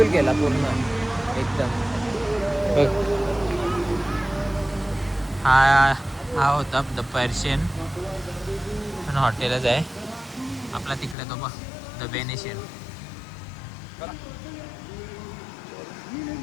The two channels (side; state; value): right; drops out; at 11.2 s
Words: केला पूर्ण एकदम. हा होता द पर्शियन, पण हॉटेलच आहे आपला तिकडे, तो बघ द वेनेशियन.